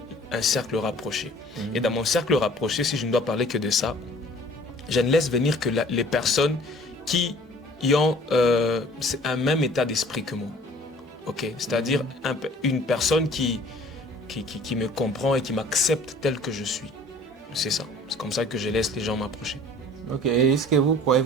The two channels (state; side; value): normal; both; correlation 0.50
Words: un cercle rapproché. Et dans mon cercle rapproché, si je ne dois parler que de ça, je ne laisse venir que les personnes qui ont un même état d'esprit que moi. Okay? C'est-à-dire une personne qui me comprend et qui m'accepte tel que je suis. C'est ça. C'est comme ça que je laisse les gens m'approcher. Ok. Est-ce que vous croyez